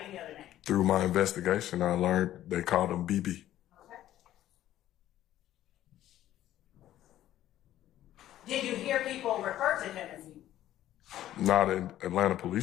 any other name? Through my investigation, I learned they called him BB. Okay. Did you hear people refer to him as BB? Not in Atlanta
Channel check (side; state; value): right; quieter; 13.1 dB